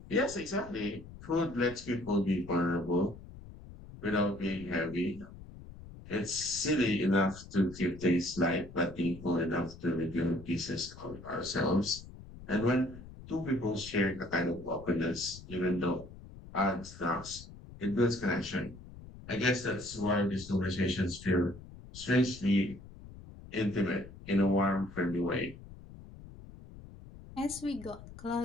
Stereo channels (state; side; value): noise; left; rumble, 16 dB below the sound